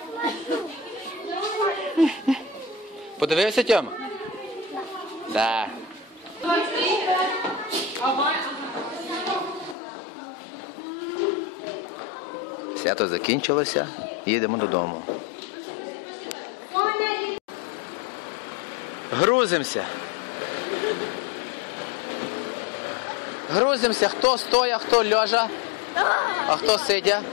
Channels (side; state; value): right; drops out; at 9.8 s